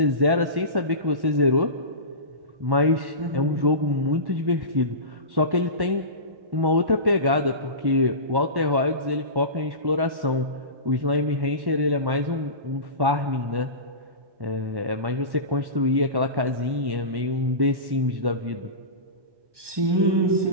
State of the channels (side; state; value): left; late; 1.1 ms